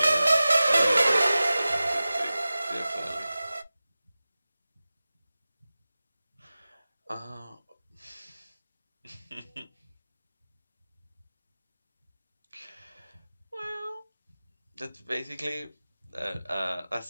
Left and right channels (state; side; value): inverted; both; correlation -0.96